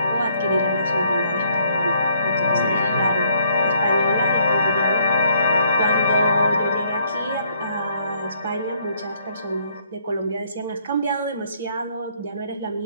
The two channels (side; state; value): both; inverted; correlation -0.67